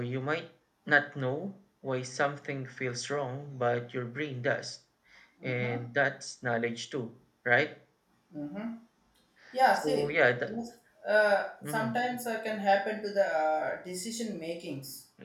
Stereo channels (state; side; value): identical; both; correlation 1.00